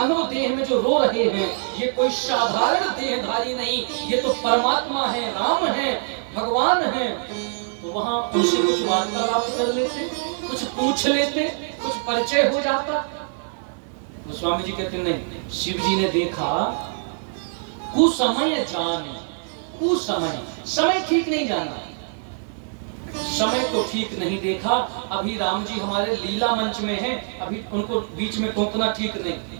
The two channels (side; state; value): left; silent; digital silence